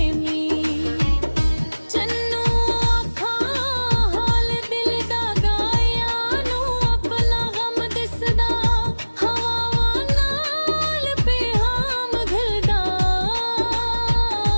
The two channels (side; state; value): both; inverted; correlation -1.00